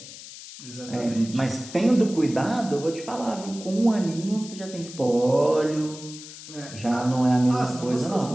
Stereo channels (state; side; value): noise; left; hiss, 15 dB below the sound